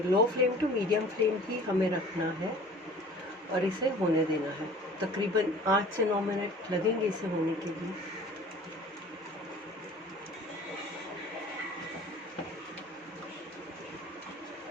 low flame to medium flame ही हमें रखना है और इसे होने देना है। तकरीबन 8 से 9 मिनट लगेंगे इसे होने के लिए।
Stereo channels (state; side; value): normal; both; correlation 0.46